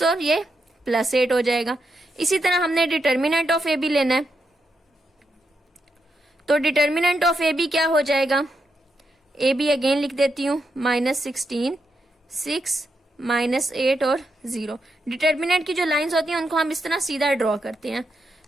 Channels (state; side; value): normal; both; correlation 0.83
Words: और ये +8 हो जाएगा। इसी तरह हमने डिटर्मिनेंट ऑफ ए बी लेना है, तो डिटर्मिनेंट ऑफ ए बी क्या हो जाएगा, ए बी अगेन लिख देती हूँ, -16, 6, -8 और 0। डिटर्मिनेंट की जो लाइंस होती हैं उनको हम इस तरह सीधा ड्रॉ करते हैं,